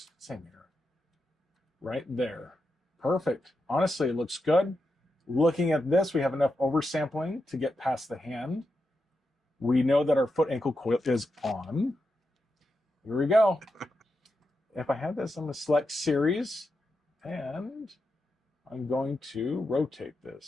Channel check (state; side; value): normal; both; correlation 0.87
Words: Same here. Right there. Perfect. Honestly, it looks good. Looking at this, we have enough oversampling to get past the hand. We know that our foot ankle coil is on. Here we go. If I have this, I'm going to select series and I'm going to rotate